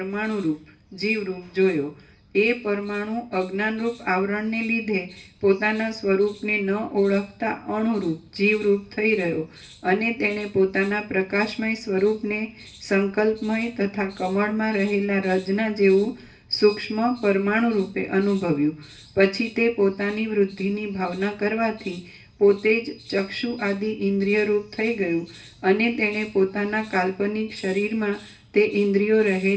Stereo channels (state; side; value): identical; both; correlation 1.00